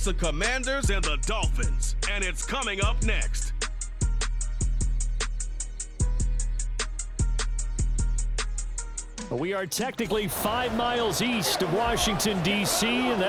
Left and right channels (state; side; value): identical; both; correlation 1.00